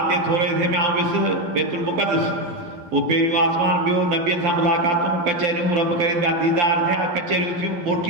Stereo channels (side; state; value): left; late; 12 ms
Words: जे थोरे से में आउं वियुसि बैतुल मुक़द्दस। उहो पहिरियों आसमान, ॿियो नबियनि सां मुलाक़ातूं, कचहरियूं रब करीम जा दीदार थिया, कचहरियूं थियूं,